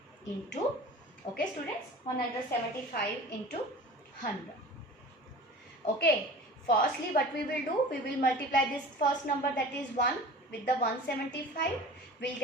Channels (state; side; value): normal; both; correlation 0.39